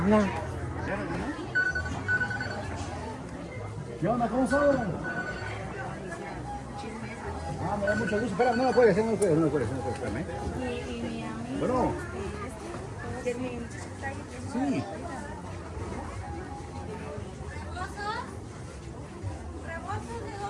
Hola. ¿Qué onda? ¿Cómo son? Ah, me da mucho gusto. Espera, no lo puedes hacer, espérame. Y mi amigo. Bueno, Que mi muchacho está ahí. sí. Rebozo de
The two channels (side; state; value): both; identical; correlation 1.00